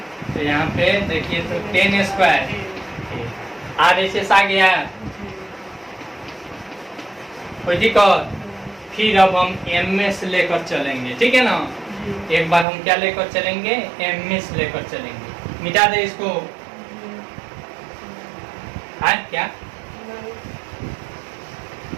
तो यहाँ पे देखिए तो 10 स्क्वायर RHS आ गया। कोई दिक्कत? फिर अब हम MS लेकर चलेंगे, ठीक है ना। एक बार हम क्या लेकर चलेंगे, MS लेकर चलेंगे। मिटा दे इसको, है क्या।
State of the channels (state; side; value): drops out; left; at 12.7 s